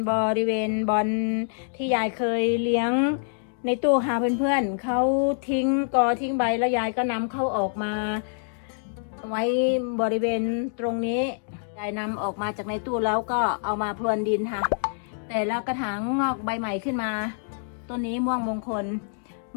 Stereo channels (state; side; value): silent; right; digital silence